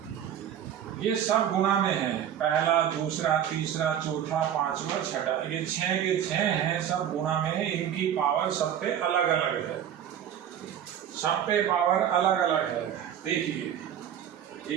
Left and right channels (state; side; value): quieter; left; 9.7 dB